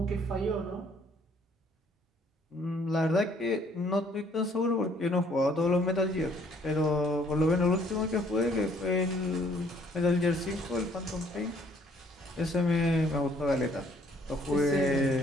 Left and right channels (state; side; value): normal; both; correlation 0.63